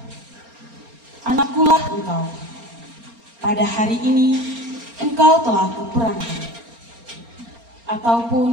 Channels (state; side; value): late; left; 4.3 ms